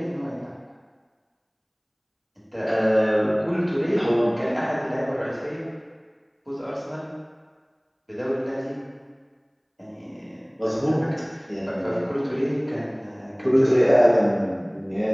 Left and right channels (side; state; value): both; identical; correlation 1.00